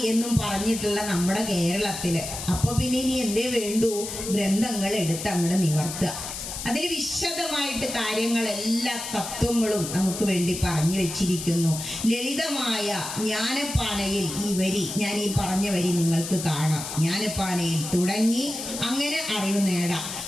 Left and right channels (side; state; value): left; noise; hiss, 7 dB below the sound